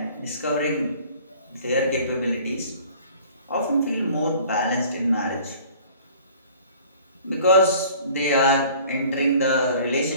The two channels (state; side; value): inverted; both; correlation -0.50